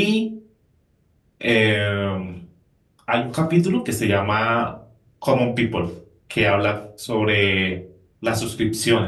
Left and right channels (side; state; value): both; identical; correlation 1.00